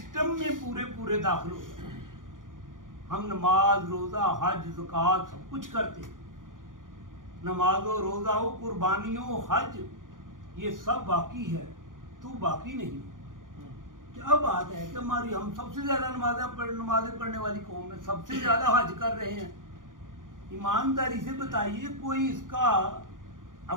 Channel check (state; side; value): late; left; 0.89 ms